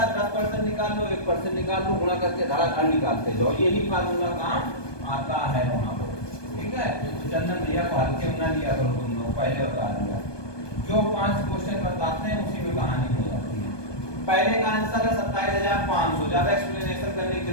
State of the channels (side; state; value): right; late; 1.2 ms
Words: 10% निकाल लो, 1% निकाल लो, गुणा करके धड़ाधड़ निकालते जाओ। यही फार्मूला काम आता है वहां पर। ठीक है, तो चंदन भैया को हल्के में ना लिया करो तुम लोग, पहले बता दिया। जो 5 क्वेश्चन बताते हैं उसी में कहानी हो जाती है। पहले का आंसर है 27,500, ज्यादा एक्सप्लेनेशन करने की